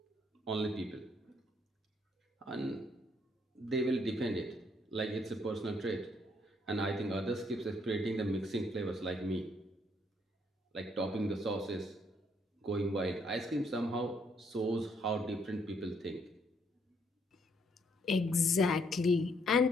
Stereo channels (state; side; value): normal; both; correlation 0.70